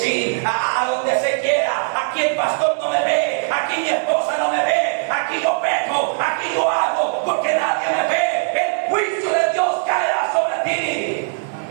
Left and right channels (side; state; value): left; silent; digital silence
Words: a donde se quiera. Aquí el pastor no me ve, aquí mi esposa no me ve, aquí yo peco, aquí yo hago, porque nadie me ve. El juicio de Dios caerá sobre ti.